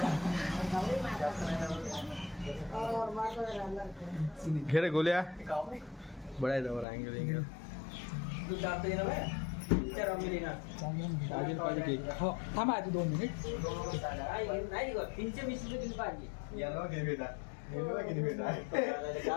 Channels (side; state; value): right; drops out; at 6.9 s